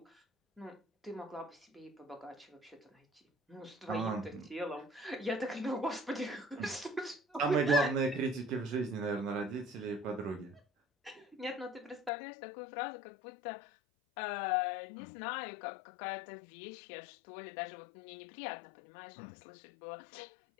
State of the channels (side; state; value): right; drops out; at 12.1 s